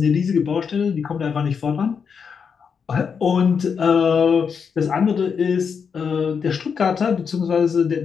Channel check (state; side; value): quieter; right; 6.3 dB